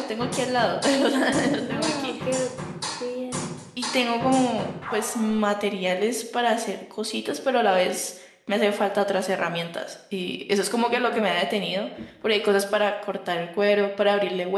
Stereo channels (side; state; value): both; identical; correlation 1.00